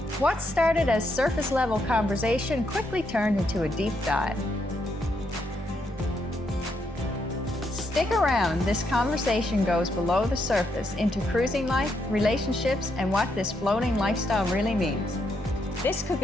What started as surface-level conversation quickly turned into a deep dive. Stick around, this conversation goes below the surface into cruising life, relationships, and what this floating lifestyle really means. This could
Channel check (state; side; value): normal; both; correlation 0.78